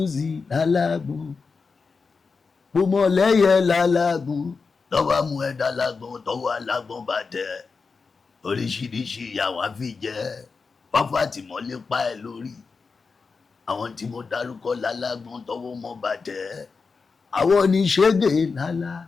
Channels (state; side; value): quieter; right; 4.8 dB